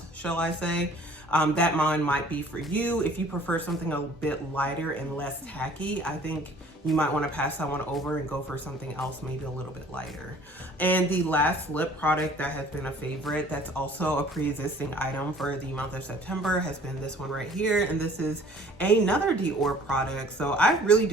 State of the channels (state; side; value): normal; both; correlation 0.52